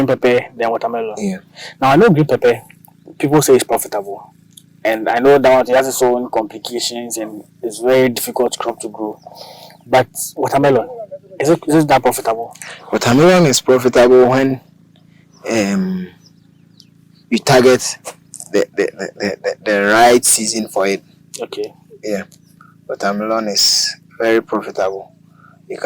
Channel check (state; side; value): identical; both; correlation 1.00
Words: pepper, then watermelon. Yeah. Now I know green pepper, people say it's profitable. And I know that it has its own complications and it's very difficult crop to grow. But watermelon, is it that profitable? Watermelon is profitable when you target the right season for it. Okay. Yeah. Watermelon is very profitable. You